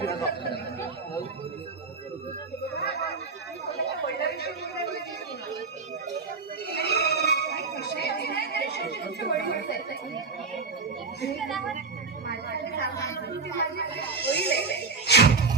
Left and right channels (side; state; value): left; quieter; 4.5 dB